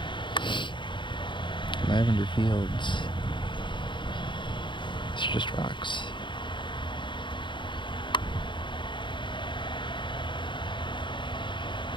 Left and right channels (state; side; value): late; right; 0.23 ms